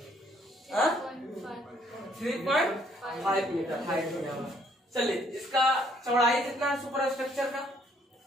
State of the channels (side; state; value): both; normal; correlation 0.65